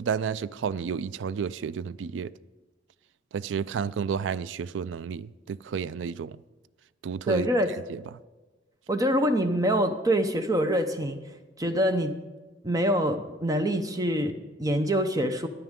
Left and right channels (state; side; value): normal; both; correlation 0.50